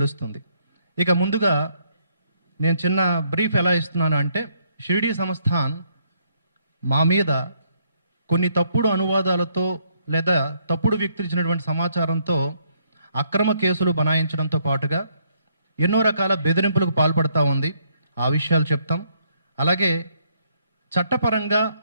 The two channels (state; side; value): inverted; both; correlation -0.70